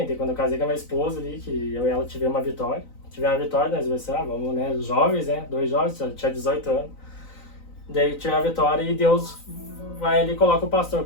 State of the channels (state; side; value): late; right; 3.9 ms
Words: daí, quando eu casei com a minha esposa ali, que eu e ela tivemos uma vitória. Tivemos uma vitória, nós dois, vamos, né? Jovens, né? 2 jovens, tinha 18 anos. Daí tive a vitória e Deus vai ali e coloca o pastor,